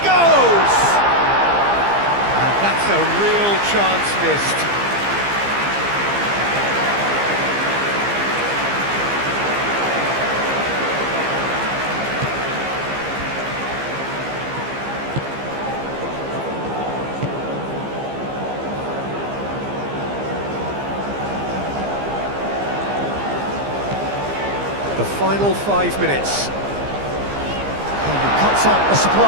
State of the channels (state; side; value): late; left; 15 ms